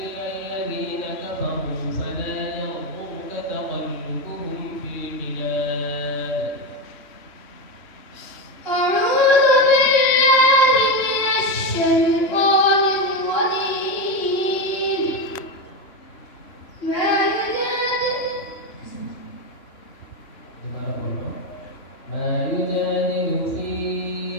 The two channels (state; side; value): late; right; 3.1 ms